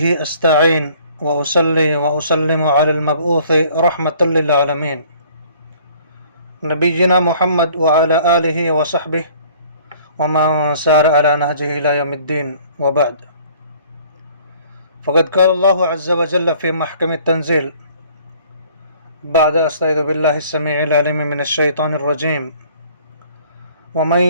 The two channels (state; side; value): inverted; both; correlation -0.55